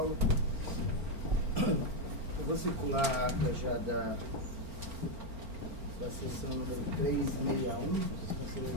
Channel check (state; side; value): late; left; 4.4 ms